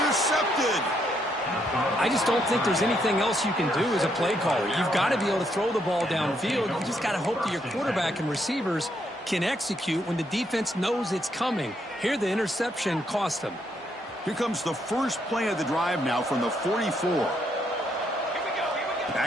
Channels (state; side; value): normal; both; correlation 0.75